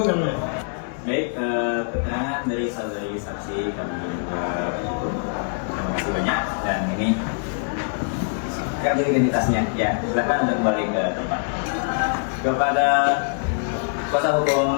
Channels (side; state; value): right; silent; 62 dB below the other